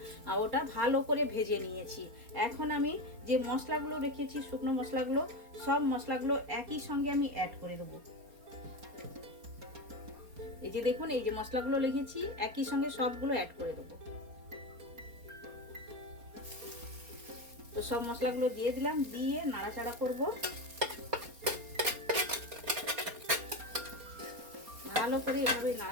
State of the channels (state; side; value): late; left; 4.3 ms